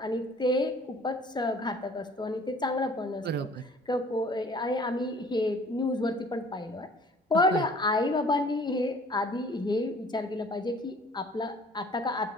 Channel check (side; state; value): both; normal; correlation 0.52